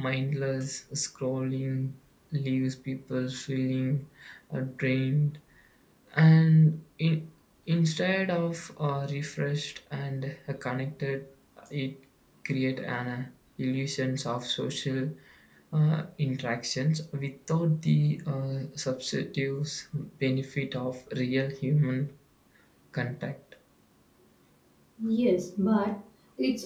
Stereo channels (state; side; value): identical; both; correlation 1.00